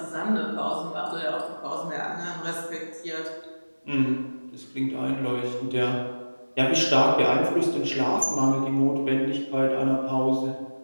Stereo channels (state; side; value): inverted; both; correlation -1.00